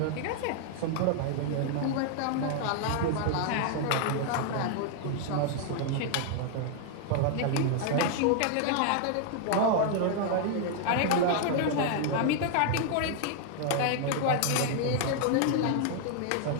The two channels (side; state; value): both; different; correlation 0.00